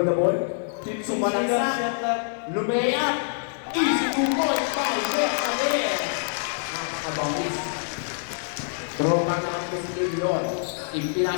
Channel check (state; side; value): silent; right; 58 dB below the other